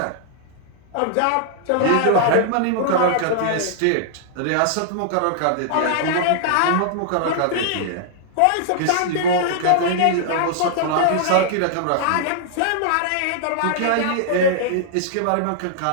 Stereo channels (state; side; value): different; both; correlation -0.01